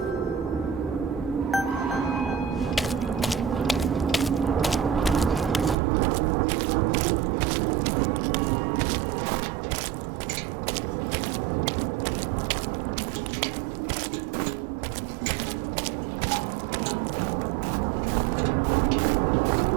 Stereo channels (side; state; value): left; drops out; at 5.8 s